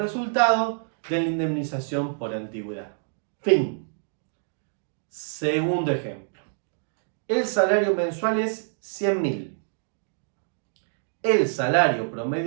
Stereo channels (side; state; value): left; silent; digital silence